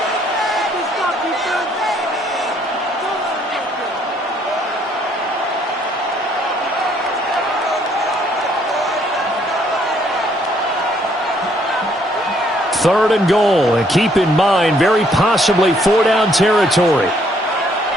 Third and goal, and keep in mind, very possibly 4-down territory.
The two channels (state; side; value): normal; both; correlation 0.67